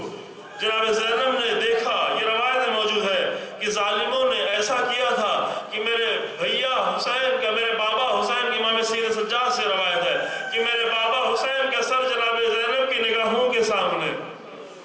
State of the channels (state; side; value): identical; both; correlation 1.00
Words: جناب زینب نے دیکھا، یہ روایت موجود ہے کہ ظالموں نے ایسا کیا تھا کہ میرے بھیا حسین کا، میرے بابا حسین کی، امام سید سجاد سے روایت ہے کہ میرے بابا حسین کا سر جناب زینب کی نگاہوں کے سامنے،